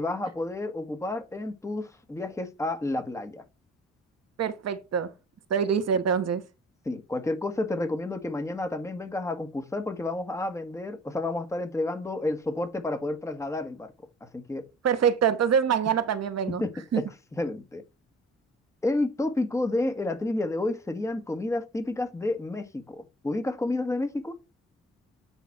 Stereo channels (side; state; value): both; normal; correlation 0.47